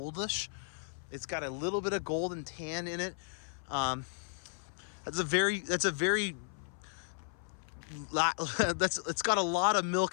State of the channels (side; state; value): right; silent; 55 dB below the other